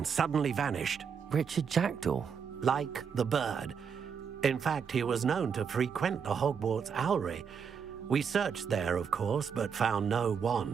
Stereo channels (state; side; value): quieter; left; 6.7 dB